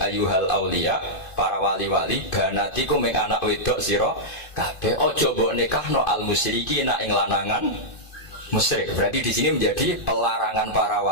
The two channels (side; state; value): right; late; 2.5 ms